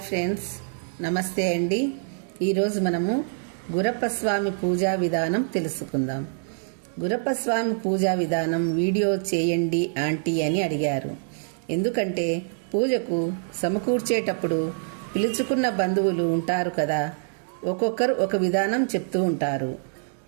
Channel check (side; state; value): left; silent; digital silence